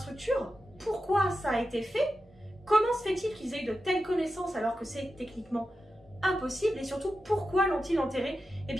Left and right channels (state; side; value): normal; both; correlation 0.91